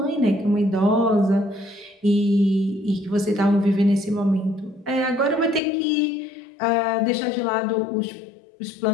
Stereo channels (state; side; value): drops out; right; at 5.6 s